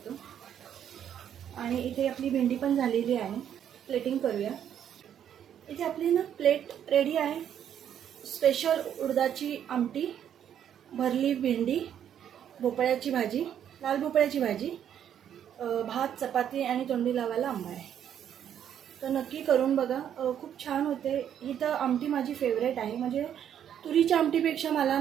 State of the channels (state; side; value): quieter; left; 9.5 dB